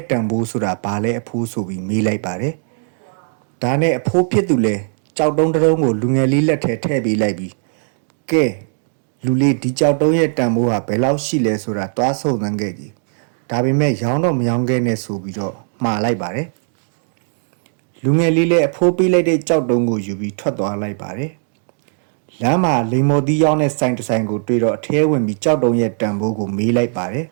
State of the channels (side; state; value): left; silent; 64 dB below the other